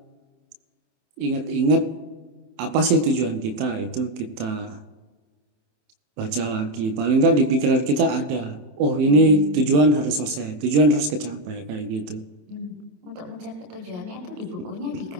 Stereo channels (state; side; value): late; left; 27 ms